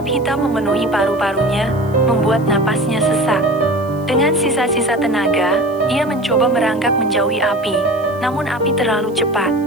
hitam memenuhi paru-parunya, membuat napasnya sesak. Dengan sisa-sisa tenaga, ia mencoba merangkak menjauhi api, namun api terlalu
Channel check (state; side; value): noise; right; hiss, 27 dB below the sound